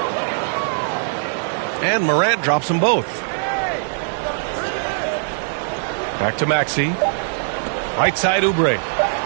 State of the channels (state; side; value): silent; left; digital silence